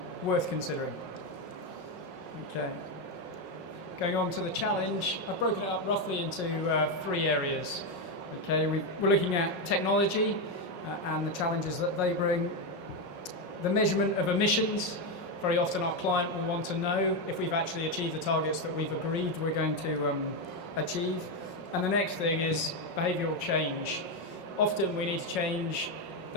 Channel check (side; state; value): right; late; 5.5 ms